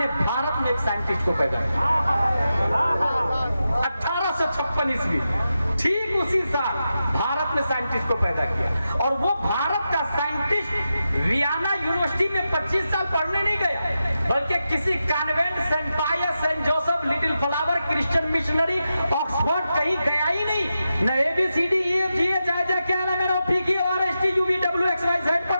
भारत में एक साइंटिस्ट को पैदा किया। 1856 ईस्वी, ठीक उसी साल भारत में साइंटिस्ट को पैदा किया। और वो भारत का साइंटिस्ट वियना यूनिवर्सिटी में 25 साल पढ़ने नहीं गया, बल्कि किसी convent, Saint Pius, Saint Joseph, Little Flower, Christian missionary, Oxford कहीं गया ही नहीं। न ABCD EFG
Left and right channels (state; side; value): inverted; both; correlation -0.89